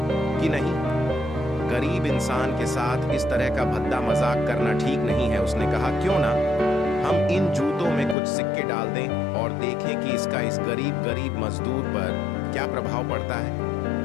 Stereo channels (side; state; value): right; drops out; at 8.2 s